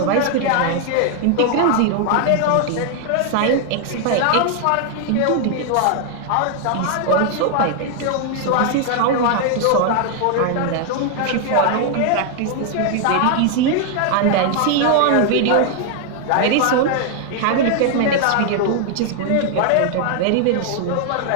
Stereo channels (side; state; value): both; different; correlation 0.00